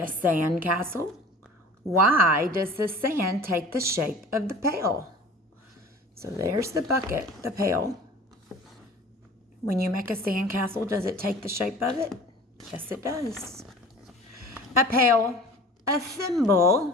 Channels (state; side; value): normal; both; correlation 0.43